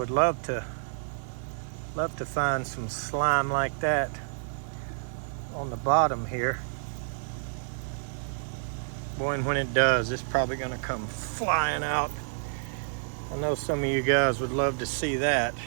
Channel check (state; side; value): silent; left; digital silence